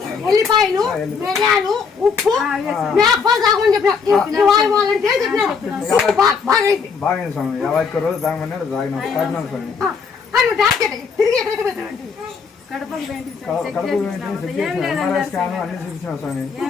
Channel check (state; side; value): quieter; right; 5.6 dB